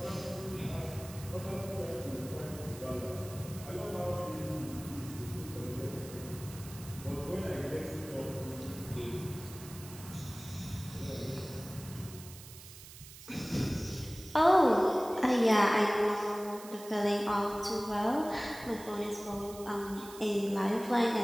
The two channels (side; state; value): right; noise; hiss, 16 dB below the sound